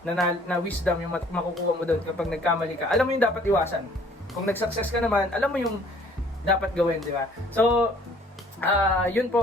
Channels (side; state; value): both; normal; correlation 0.57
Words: na wisdom yung makukuha mo doon kapag nagkamali ka. Alam mo yung dapat iwasan. Kung nag-success ka naman, alam mo yung dapat gawin, di ba? So, yun